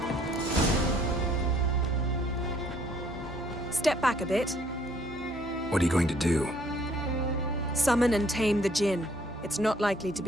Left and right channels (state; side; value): normal; both; correlation 0.63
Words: Step back a bit. What are you going to do? Summon and tame the Jinn. It's not likely to